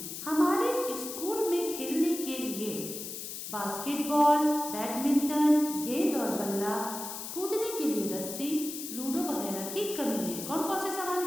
हमारे स्कूल में खेलने के लिए बास्केटबॉल, बैडमिंटन, गेंद और बल्ला, कूदने के लिए रस्सी, लूडो वगैरह की कमी है। कौन कौन से सामान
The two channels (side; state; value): left; noise; hiss, 8 dB below the sound